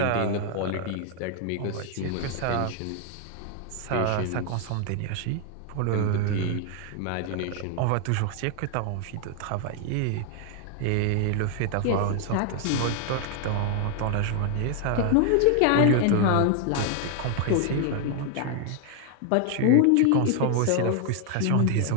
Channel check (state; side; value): different; both; correlation 0.00